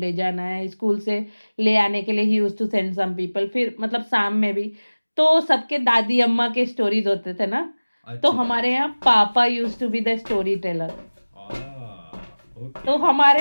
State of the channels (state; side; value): inverted; both; correlation -1.00